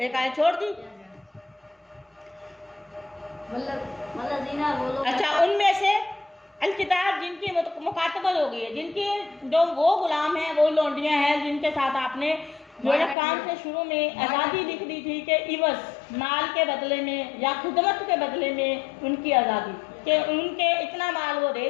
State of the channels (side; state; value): right; drops out; at 13.2 s